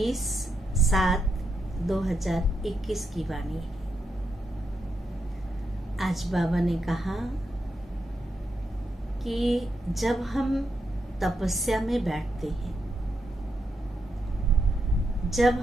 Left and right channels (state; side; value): normal; both; correlation 0.83